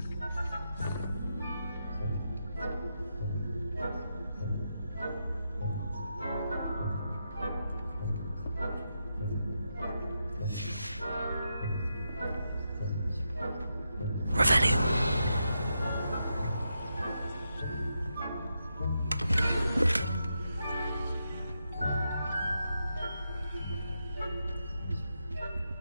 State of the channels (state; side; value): inverted; both; correlation -0.84